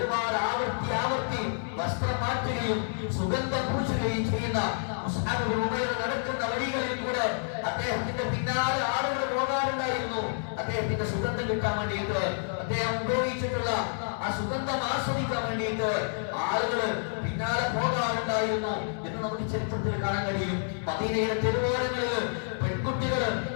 ആവർത്തി വസ്ത്രം മാറ്റുകയും സുഗന്ധം പൂശുകയും ചെയ്യുന്ന മുസ്അബ് ബിൻ ഉമൈർ നടക്കുന്ന വഴികളിൽ കൂടെ അദ്ദേഹത്തിന്റെ പിന്നാലെ ആളുകൾ പോകാറുണ്ടായിരുന്നു. അദ്ദേഹത്തിന്റെ സുഗന്ധം കിട്ടാൻ വേണ്ടിയിട്ട്, അദ്ദേഹം ഉപയോഗിച്ചിട്ടുള്ള ആ സുഗന്ധം ആസ്വദിക്കാൻ വേണ്ടിയിട്ട് ആളുകൾ പിന്നാലെ പോകാറുണ്ടായിരുന്നു എന്ന് നമുക്ക് ചരിത്രത്തിൽ കാണാൻ കഴിയും. മദീനയുടെ തെരുവോരങ്ങളിൽ പെൺകുട്ടികൾ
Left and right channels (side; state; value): right; silent; digital silence